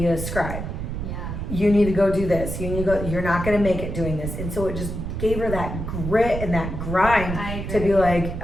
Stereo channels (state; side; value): noise; right; rumble, 5 dB below the sound